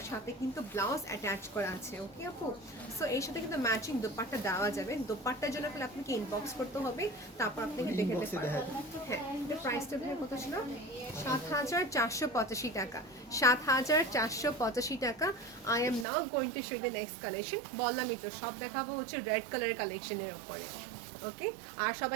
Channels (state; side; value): drops out; left; at 16.1 s